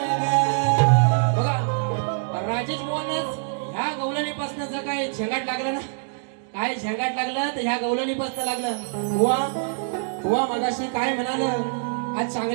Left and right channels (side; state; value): left; silent; digital silence